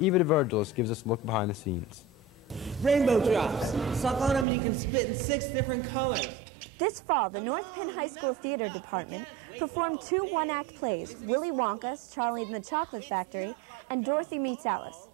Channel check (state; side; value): drops out; left; at 4.5 s